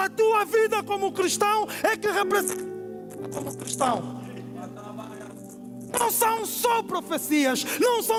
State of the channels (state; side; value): identical; both; correlation 1.00